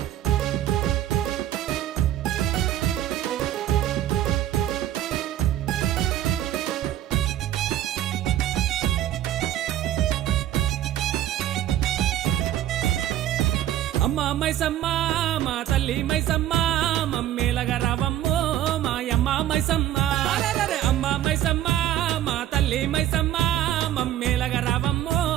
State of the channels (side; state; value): left; quieter; 12.3 dB